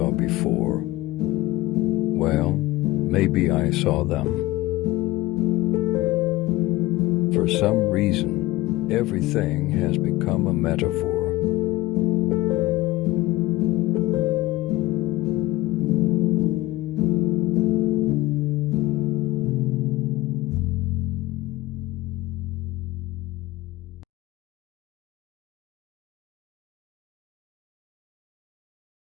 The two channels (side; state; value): right; quieter; 18.6 dB